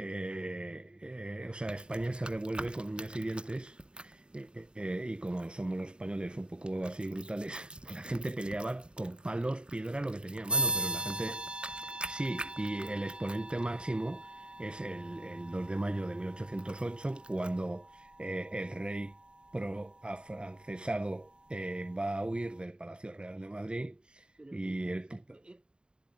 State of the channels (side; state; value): left; late; 0.050 ms